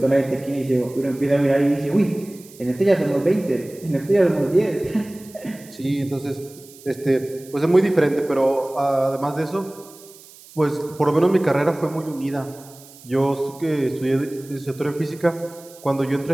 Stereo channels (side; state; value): right; noise; hiss, 22 dB below the sound